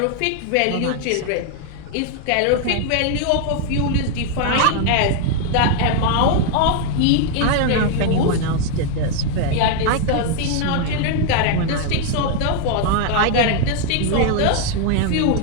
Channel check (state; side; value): different; both; correlation 0.01